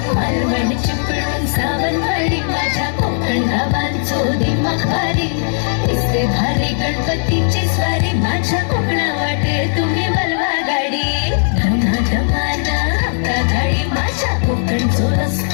मालवण चिपळूण सावंतवाडी माझ्या कोकण गावांचो दिमाग भारी दिसते भारी गणपतीची स्वारी माझ्या कोकणा वाटे तुम्ही बलवा गाडी धमा धमाना हप्ता गाडी माझ्या कोकणचो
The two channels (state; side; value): silent; right; digital silence